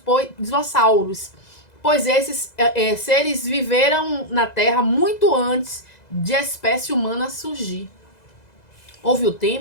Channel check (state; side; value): late; right; 2.0 ms